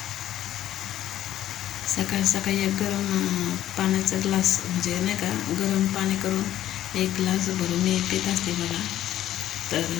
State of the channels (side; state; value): right; quieter; 12.5 dB